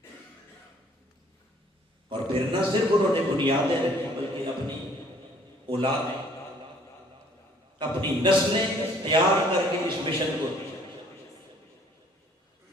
اور پھر نہ صرف انہوں نے بنیادیں رکھی بلکہ اپنی اولادیں، اپنی نسلیں تیار کر کے اس مشن کو دیا،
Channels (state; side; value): normal; both; correlation 0.59